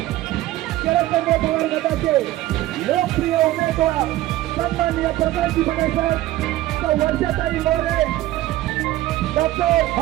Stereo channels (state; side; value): quieter; left; 15.8 dB